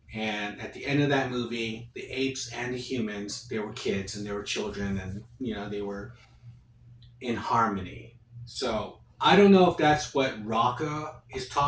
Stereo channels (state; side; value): identical; both; correlation 1.00